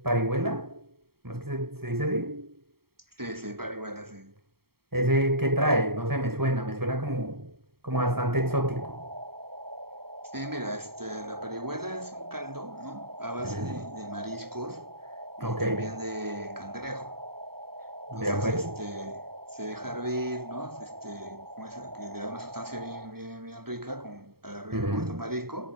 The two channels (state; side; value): late; left; 0.95 ms